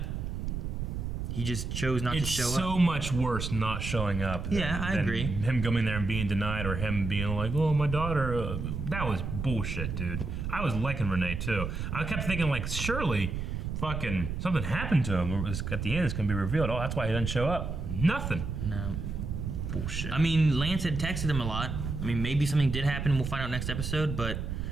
he just chose not to show up. It's so much worse not showing up than, I agree. Him coming there and being denied, or him being like, oh, my daughter. That was bullshit, dude. I was liking Renee, too. I kept thinking, like, surely fucking something happened to him. At the end, it's going to be revealed. Oh, that's why he doesn't show up. Nothing. No. Bullshit. I mean, Lance had texted him a lot. I mean, maybe something did happen. We'll find out next episode. But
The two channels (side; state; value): right; noise; rumble, 4 dB below the sound